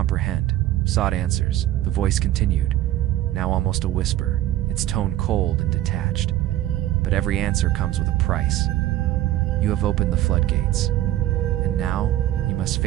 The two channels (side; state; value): left; quieter; 14.0 dB